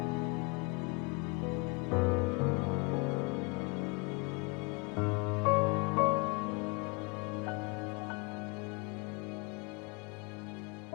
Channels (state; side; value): quieter; right; 30.3 dB